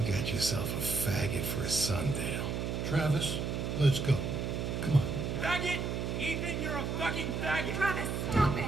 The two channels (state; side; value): noise; right; hum, 2 dB below the sound